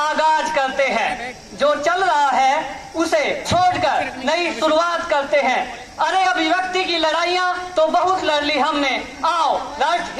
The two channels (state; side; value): identical; both; correlation 1.00